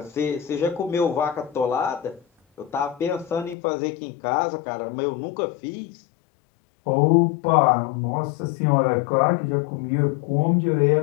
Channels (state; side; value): drops out; right; at 3.6 s